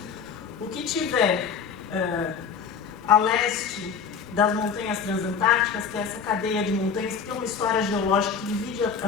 O que tiver a leste das montanhas transantárticas, que é essa cadeia de montanhas que tem uma história geológica que divide a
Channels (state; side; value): quieter; right; 6.4 dB